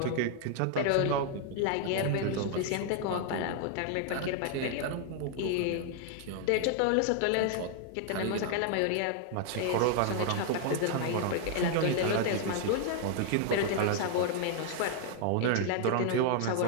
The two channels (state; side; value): different; both; correlation 0.00